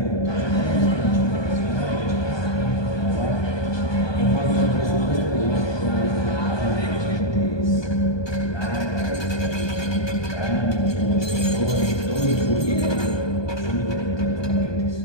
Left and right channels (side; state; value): right; late; 1.2 ms